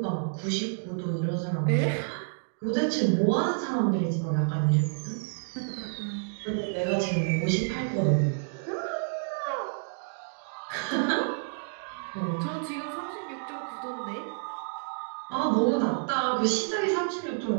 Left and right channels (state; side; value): silent; left; digital silence